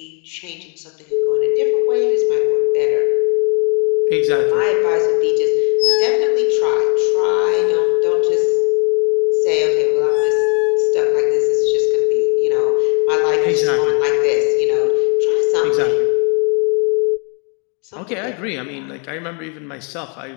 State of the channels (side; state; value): right; quieter; 36.1 dB